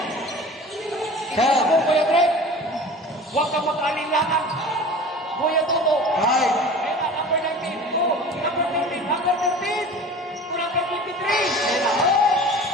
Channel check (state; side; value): normal; both; correlation 0.39